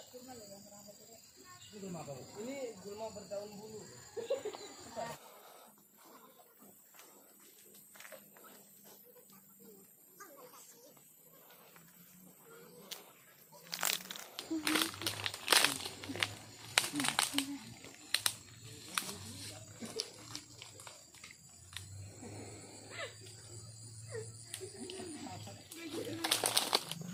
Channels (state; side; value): identical; both; correlation 1.00